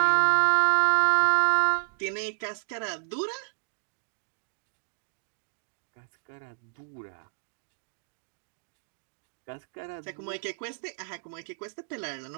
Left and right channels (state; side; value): silent; left; digital silence